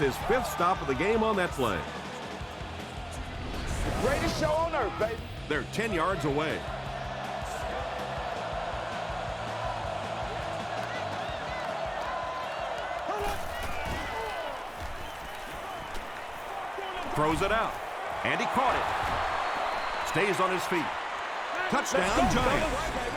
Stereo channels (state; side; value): identical; both; correlation 1.00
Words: 5th stop of the game on that play. The greatest show on earth, baby. They're 10 yards away. Throws it out, and he caught it. Stays on his feet. Touchdown,